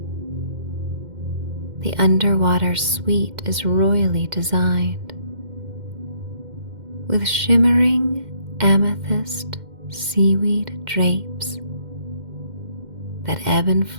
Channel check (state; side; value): late; left; 2.1 ms